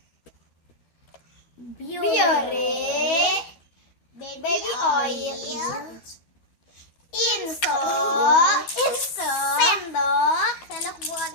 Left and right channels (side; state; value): right; late; 12 ms